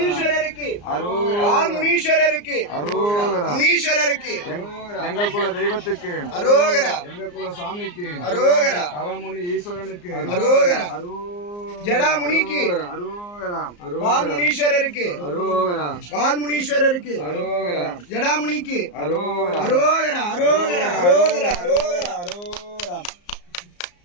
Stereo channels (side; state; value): right; late; 34 ms